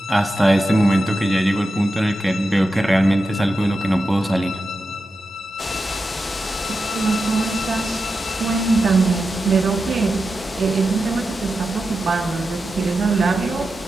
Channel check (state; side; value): normal; both; correlation 0.90